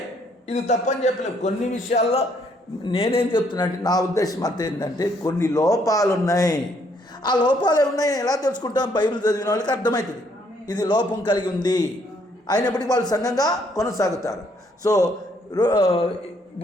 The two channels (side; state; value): both; normal; correlation 0.68